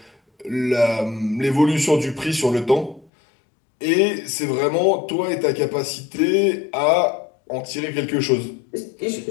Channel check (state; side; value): drops out; right; at 3.1 s